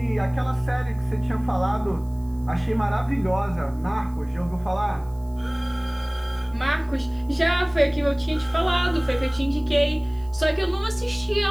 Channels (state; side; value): noise; right; hiss, 29 dB below the sound